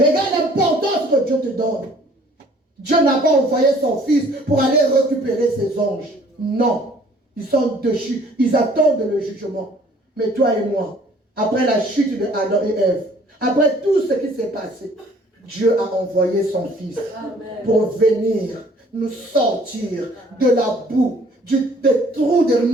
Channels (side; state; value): both; normal; correlation 0.56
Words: l'importance que Dieu te donne. Dieu n'a pas envoyé son fils pour aller récupérer ses anges. Non. Ils sont déchus. Ils attendent le jugement. Mais toi et moi, après la chute de Adam et Ève, après tout ce qui s'est passé, Dieu a envoyé son fils pour venir nous sortir de la boue, des trous de